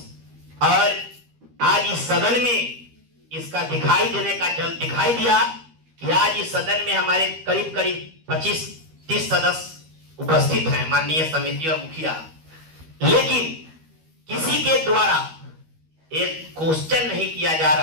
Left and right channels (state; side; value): late; left; 13 ms